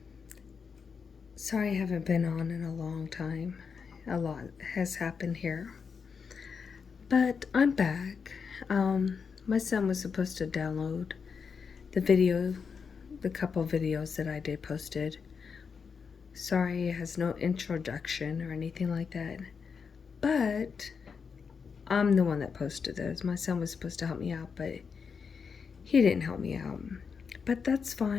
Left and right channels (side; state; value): right; quieter; 5.9 dB